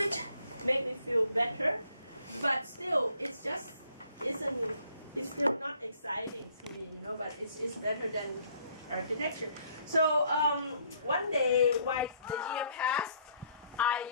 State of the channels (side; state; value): both; inverted; correlation -0.63